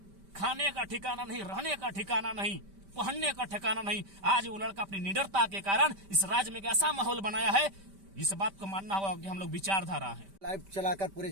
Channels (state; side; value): late; left; 5.1 ms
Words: खाने का ठिकाना नहीं, रहने का ठिकाना नहीं, पहनने का ठिकाना नहीं। आज वो लड़का अपनी निडरता के कारण इस राज्य में एक ऐसा माहौल बनाया है, इस बात को मानना होगा कि हम लोग विचारधारा हैं। लाइव चलाकर पूरे